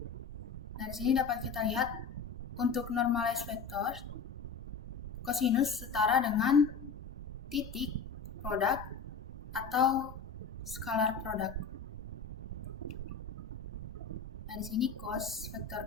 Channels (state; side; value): quieter; right; 5.3 dB